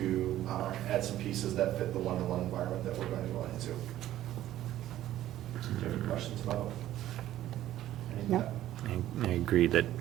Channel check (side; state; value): left; quieter; 13.3 dB